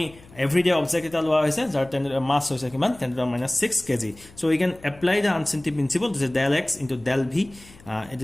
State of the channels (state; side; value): noise; left; hum, 23 dB below the sound